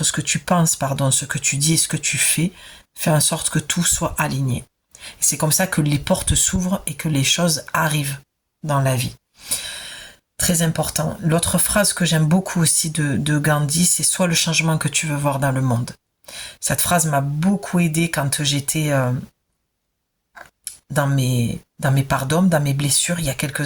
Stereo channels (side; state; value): both; identical; correlation 1.00